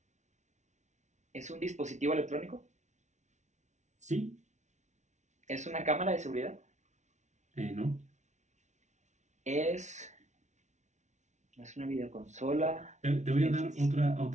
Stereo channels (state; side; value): late; left; 0.34 ms